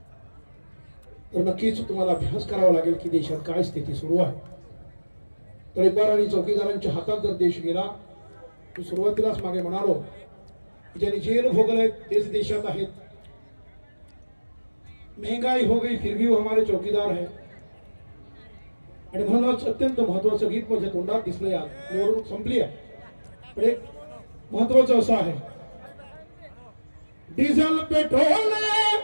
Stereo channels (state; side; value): inverted; both; correlation -1.00